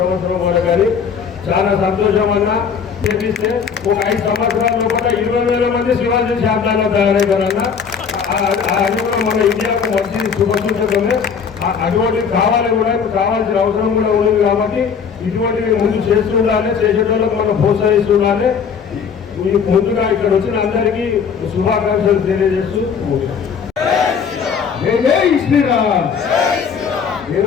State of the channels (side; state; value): right; quieter; 6.6 dB